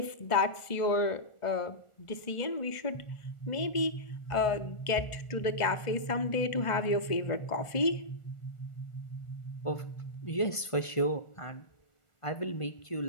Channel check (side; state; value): right; late; 1.5 ms